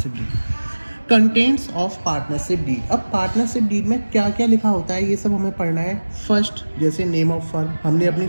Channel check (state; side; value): inverted; both; correlation -1.00